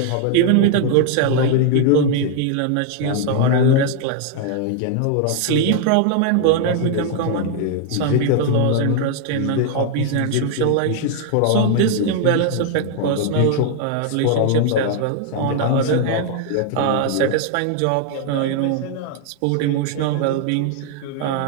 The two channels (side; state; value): both; different; correlation 0.00